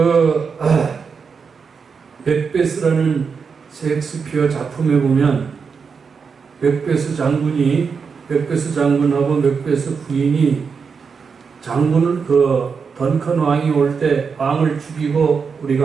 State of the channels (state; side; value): quieter; left; 5.7 dB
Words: 맥베스라는 셰익스피어 작품에 보면 맥베스 장군하고 맥베스 부인이 장군을 던컨 왕이 올 때 왕을 죽이고